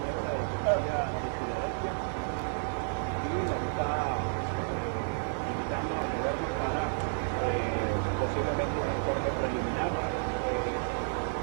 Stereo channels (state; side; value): silent; left; digital silence